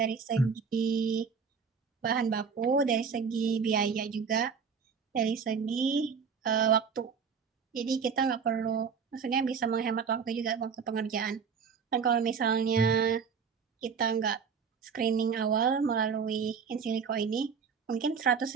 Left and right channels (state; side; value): quieter; left; 6.1 dB